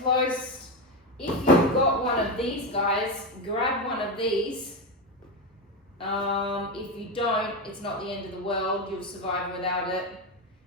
close If you've got one of these guys, grab one of these. If you don't, it's not the end of the world, you'll survive without it.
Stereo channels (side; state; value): both; normal; correlation 0.14